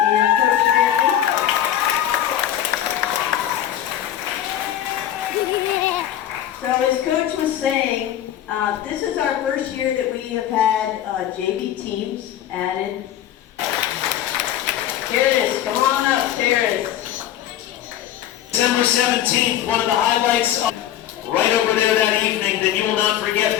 Coach Brantley. So as Coach was saying, this is our first year that we have had JV teams added. Here it is. Come on up. There it is. December 17th, one of the highlights right over there that evening that you will not forget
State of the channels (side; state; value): right; quieter; 11.4 dB